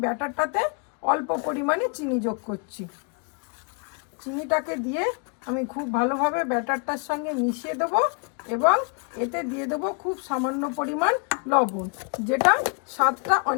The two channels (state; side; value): quieter; right; 39.8 dB